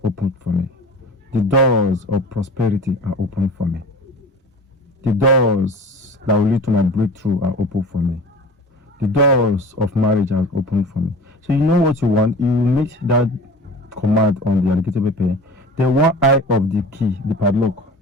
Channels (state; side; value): normal; both; correlation 0.38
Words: open for me. The doors of prosperity are open for me. The doors that will lead to my breakthrough are open for me. The doors of marriage are open for me. So you know what you want. You make that command on the alligator pepper. The one eye of the key, the padlock.